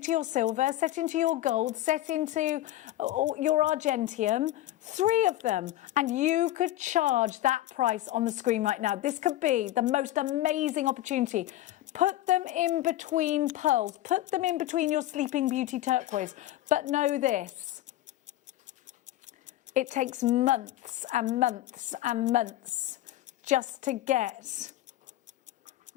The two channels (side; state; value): right; quieter; 14.7 dB